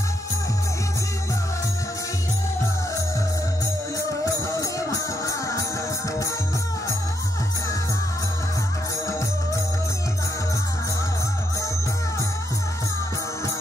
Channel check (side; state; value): both; normal; correlation 0.79